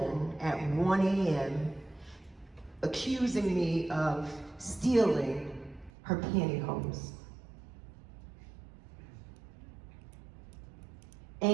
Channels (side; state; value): left; drops out; at 5.9 s